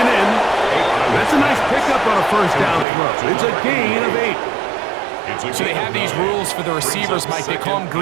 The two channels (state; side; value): drops out; left; at 2.9 s